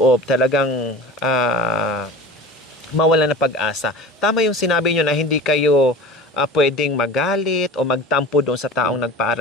talagang mawala ng pag-asa. Tama yung sinabi nyo na hindi kayo pwedeng magalit o magtampo doon sa taong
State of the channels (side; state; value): both; normal; correlation 0.35